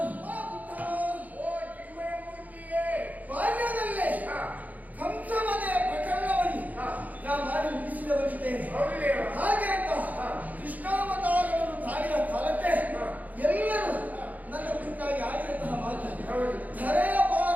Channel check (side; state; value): left; late; 0.079 ms